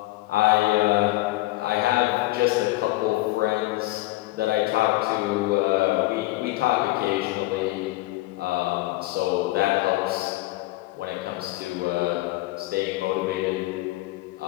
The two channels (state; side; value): quieter; right; 18.8 dB